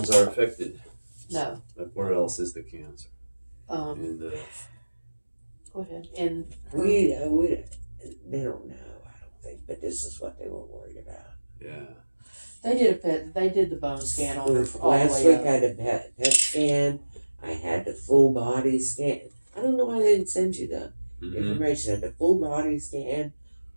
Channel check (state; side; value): inverted; both; correlation -1.00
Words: are affected. No. Like where else is the cancer? And Go ahead. And We they don't know, I don't think, but this is what they were worried about. yeah. they did the bone scan on her all the Last way week up. I had a PET scan. I had the full body scan. I don't know why they didn't send you the information. I had the full body scan,